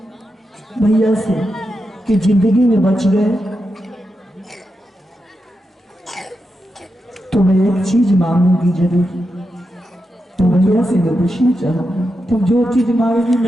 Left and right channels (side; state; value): both; normal; correlation 0.87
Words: भैया से कि जिंदगी में बच गए तो मैं एक चीज मांगूंगी जरूर। तो भैया से मैं पूछना चाहूंगी, तुम जो चीज मांगेगी